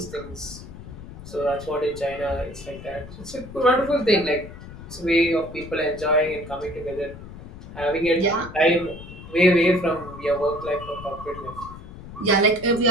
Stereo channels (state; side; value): noise; left; rumble, 14 dB below the sound